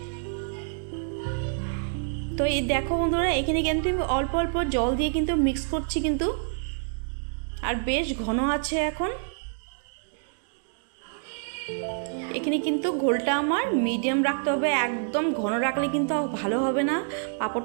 তো এই দেখো বন্ধুরা, এখানে কিন্তু আমি অল্প অল্প জল দিয়ে কিন্তু মিক্স করছি কিন্তু, আর বেশ ঘন আছে এখন। এখানে কিন্তু ঘোলটা আমার মিডিয়াম রাখতে হবে, একদম ঘন রাখলে কিন্তু ভালো হবে না,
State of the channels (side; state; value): left; silent; digital silence